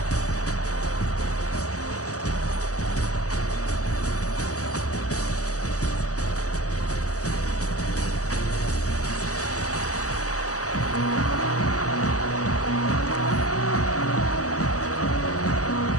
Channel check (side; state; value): right; late; 0.66 ms